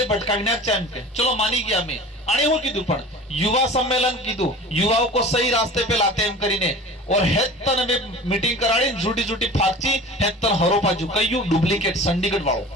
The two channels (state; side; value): normal; both; correlation 0.38